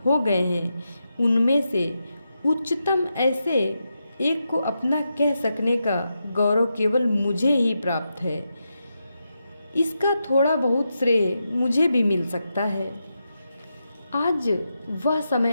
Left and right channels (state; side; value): inverted; both; correlation -0.86